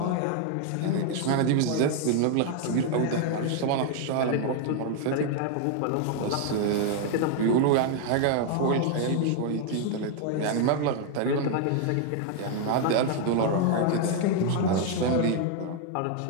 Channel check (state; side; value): different; both; correlation 0.00